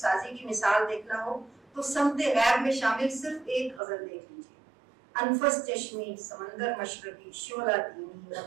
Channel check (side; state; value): left; drops out; at 3.8 s